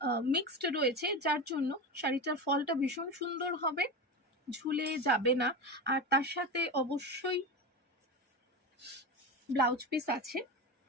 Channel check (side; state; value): both; normal; correlation 0.23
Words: মিক্সড রয়েছে, যার জন্য শাড়িটার ফলটা ভীষণ সুন্দর হবে, ঝুলে যাবে না। আর তার সাথে অবশ্যই ব্লাউজ পিস আছে,